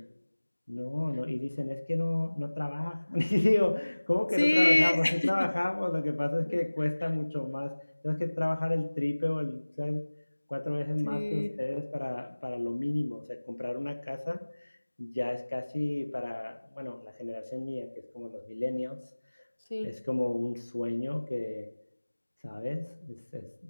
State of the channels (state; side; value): inverted; both; correlation -1.00